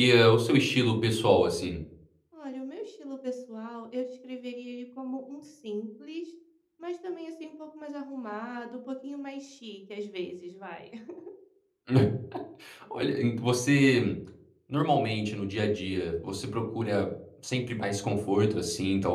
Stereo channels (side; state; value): both; identical; correlation 1.00